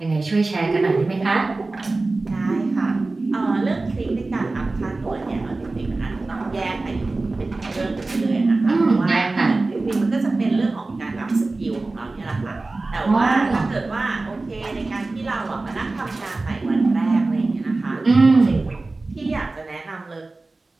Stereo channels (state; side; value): quieter; left; 3.3 dB